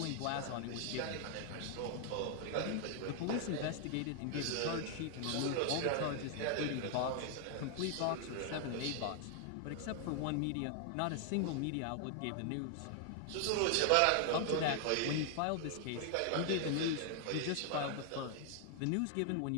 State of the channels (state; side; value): different; both; correlation 0.00